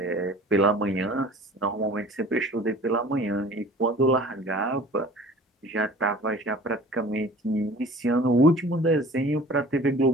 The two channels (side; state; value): both; normal; correlation 0.45